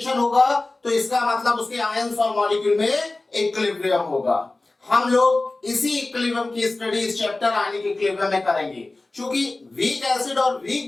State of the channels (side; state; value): right; quieter; 3.1 dB